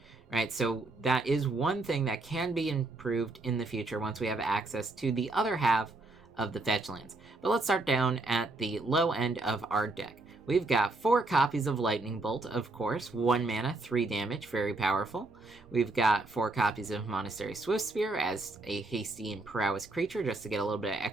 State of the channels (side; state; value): left; quieter; 3.1 dB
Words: right? So that is one thing that can be improved in the future once we have access to the other half of the fetch lands. But let's start down at the low end of our deck. We've got 4 copies of Lightning Bolt, of course, 1 mana, 3 damage, very powerful. We've got 4 copies of Monastery Swiftspear as a hasty and prowess creature, just to get a little bit of